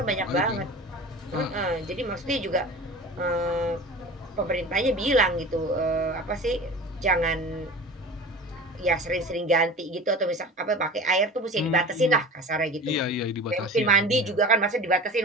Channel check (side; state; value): both; normal; correlation 0.35